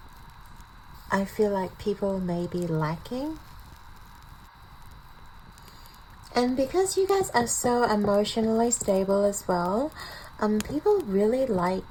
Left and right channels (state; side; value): identical; both; correlation 1.00